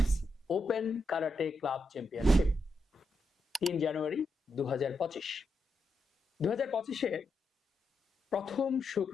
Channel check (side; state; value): both; normal; correlation 0.84